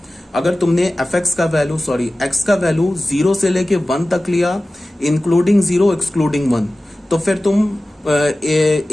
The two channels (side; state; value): both; normal; correlation 0.96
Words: अगर तुमने एफ एक्स का वैल्यू, सॉरी एक्स का वैल्यू 0 से लेके 1 तक लिया, इंक्लूडिंग 0 एक्सक्लूडिंग 1, तो फिर तुम